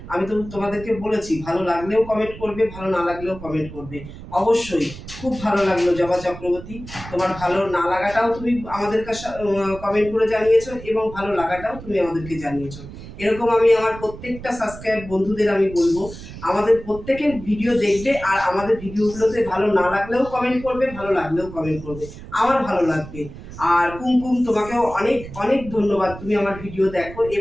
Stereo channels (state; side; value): noise; right; rumble, 14 dB below the sound